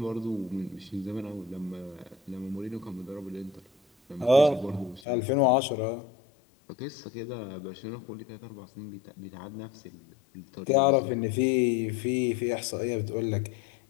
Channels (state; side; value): drops out; right; at 5.0 s